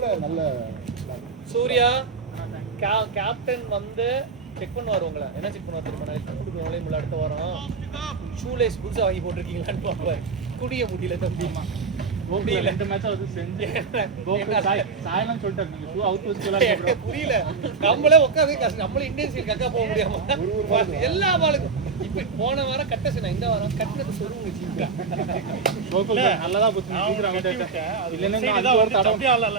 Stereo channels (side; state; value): left; quieter; 5.0 dB